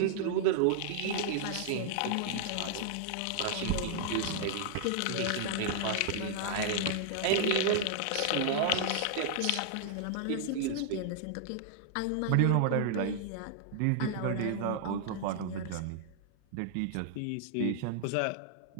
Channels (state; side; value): different; both; correlation -0.01